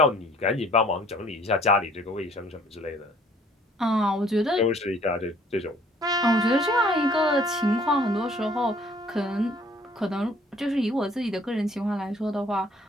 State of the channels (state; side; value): normal; both; correlation 0.57